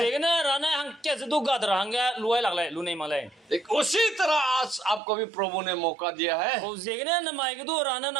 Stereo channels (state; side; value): drops out; left; at 5.0 s